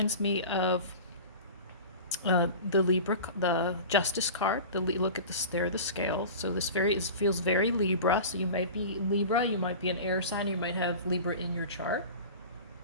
me of the Libra, the Justice card. Look at this, there are the scales. So this feels very Libra. So you might be Libra, you might be an air sign, you might have Libra in your chart.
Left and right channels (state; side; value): inverted; both; correlation -0.34